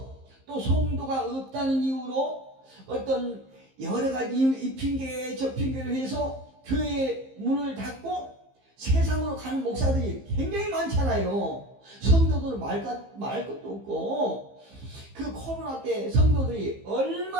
또 성도가 없다는 이유로 어떤 여러 가지 이 핑계 저 핑계를 해서 교회 문을 닫고 세상으로 가는 목사들이 굉장히 많잖아요. 성도들 말 것도 없고 그 코로나 때 성도들이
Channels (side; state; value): left; late; 15 ms